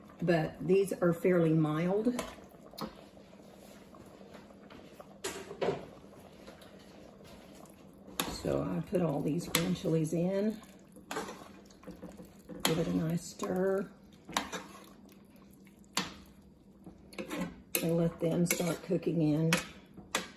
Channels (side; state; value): both; identical; correlation 1.00